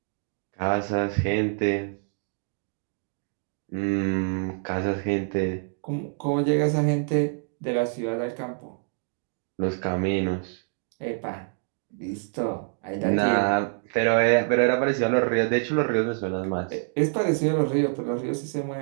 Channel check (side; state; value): left; silent; 61 dB below the other